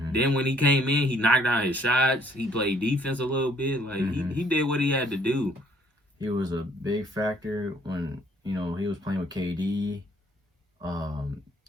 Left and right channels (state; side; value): normal; both; correlation 0.63